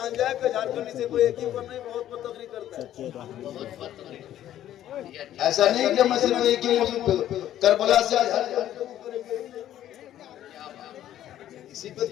जाए कि झारखंड से कोई एक ही पर नहीं बहुत पर तकरीर करता है। ऐसा नहीं कि मैं सिर्फ एक ही करबला से इसी पे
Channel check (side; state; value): right; quieter; 12.1 dB